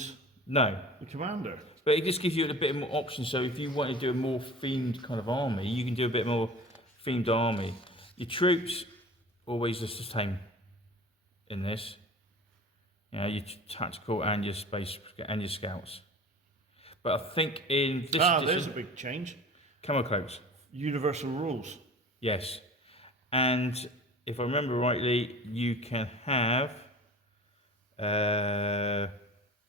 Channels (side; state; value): both; normal; correlation 0.39